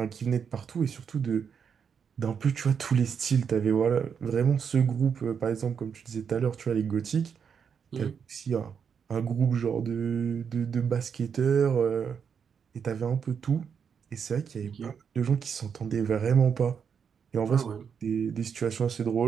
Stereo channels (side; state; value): left; quieter; 6.9 dB